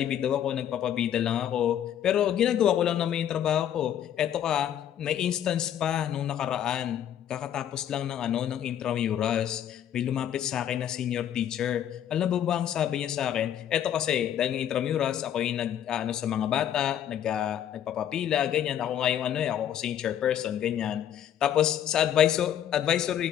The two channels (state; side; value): quieter; right; 10.3 dB